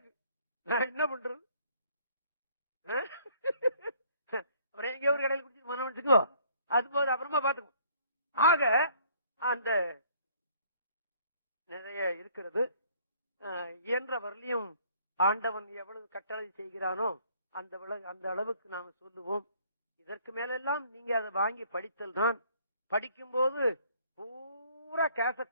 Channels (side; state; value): both; inverted; correlation -0.60